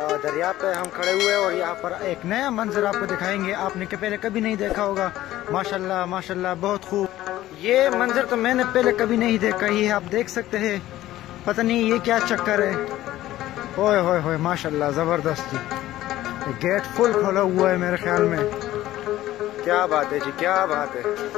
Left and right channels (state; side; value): quieter; right; 14.8 dB